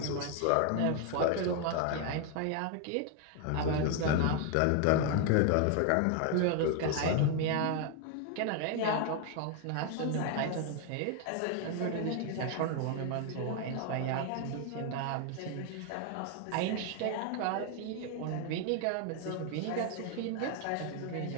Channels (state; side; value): different; both; correlation 0.01